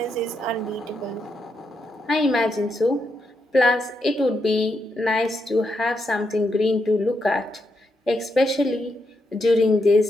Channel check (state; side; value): normal; both; correlation 0.82